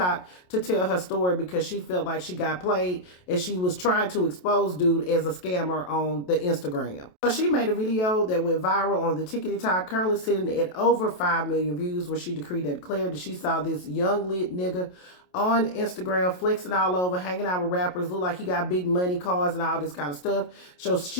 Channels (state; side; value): late; right; 28 ms